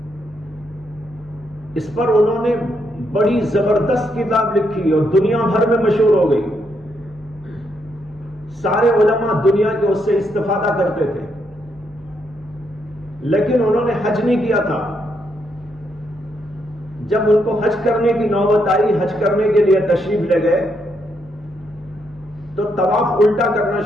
اس پر انہوں نے بڑی زبردست کتاب لکھی اور دنیا بھر میں مشہور ہو گئی، سارے علماء دنیا کے اس سے استفادہ کرتے تھے، لیکن انہوں نے حج نہیں کیا تھا، جب ان کو حج کرنے کی نوبت آئی، حج کرنے کے لیے تشریف لے گئے تو طواف الٹا کرنا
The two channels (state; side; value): normal; both; correlation 0.77